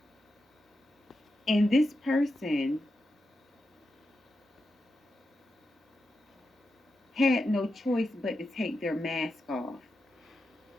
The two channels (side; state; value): both; normal; correlation 0.88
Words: And this person had no choice but to take their mask off.